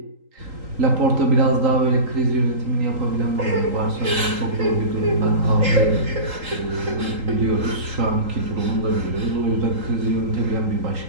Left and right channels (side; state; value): left; late; 3.8 ms